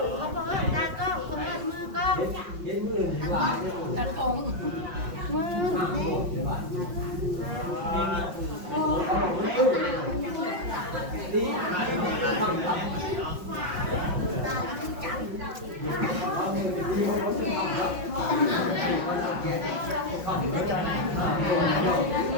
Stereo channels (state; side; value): late; left; 5.5 ms